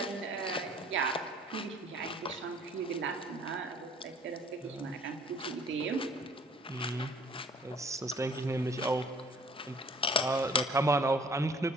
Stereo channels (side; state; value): both; normal; correlation 0.56